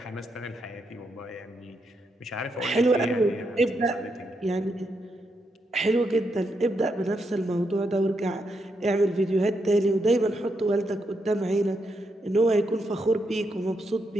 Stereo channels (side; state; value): both; normal; correlation 0.81